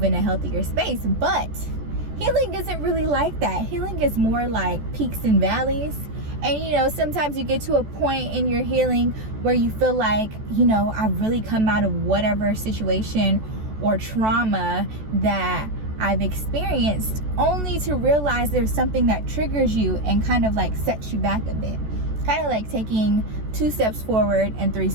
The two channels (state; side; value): late; left; 14 ms